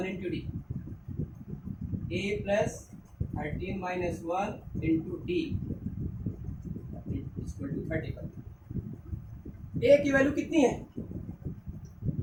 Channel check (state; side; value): identical; both; correlation 1.00